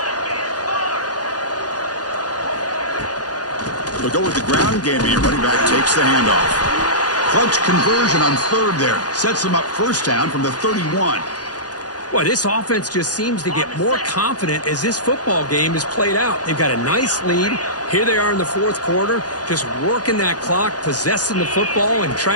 They'll go with the ground game here. Running back takes the handoff. Clutch conversion on third there. Sets them up first down from the 31. Boy, this offense just seems to get more confident as this football game is played out. They've got a nice lead. Here they are in the fourth quarter, just working that clock, possessing the football, and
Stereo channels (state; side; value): late; right; 0.68 ms